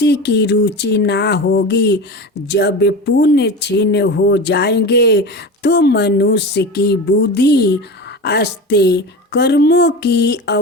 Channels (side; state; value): both; normal; correlation 0.28